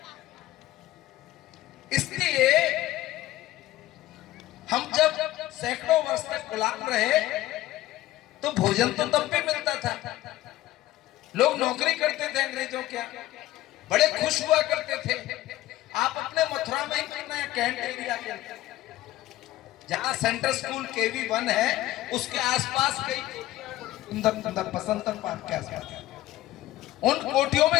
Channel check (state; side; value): quieter; right; 15.5 dB